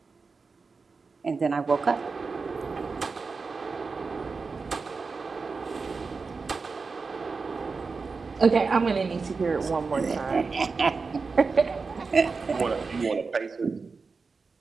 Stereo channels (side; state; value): left; quieter; 4.5 dB